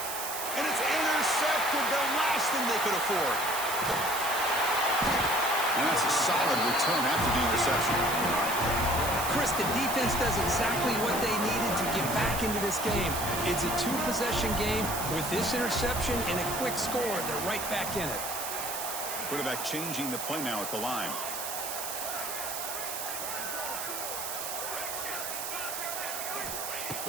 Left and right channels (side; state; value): right; noise; hiss, 5 dB below the sound